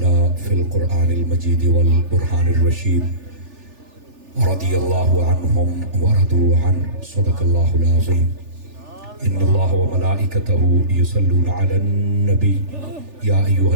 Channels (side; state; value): left; late; 3.4 ms